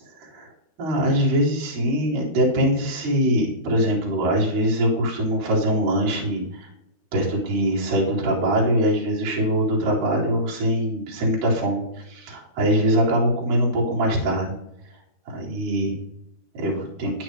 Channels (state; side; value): late; left; 13 ms